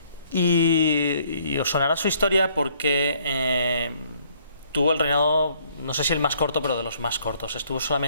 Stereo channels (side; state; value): both; inverted; correlation -0.64